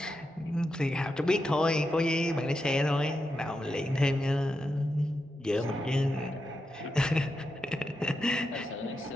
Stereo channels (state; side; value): normal; both; correlation 0.87